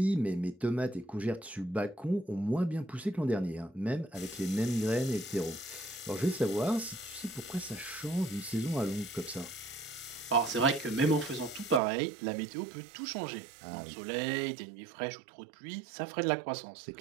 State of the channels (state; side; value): drops out; left; at 11.8 s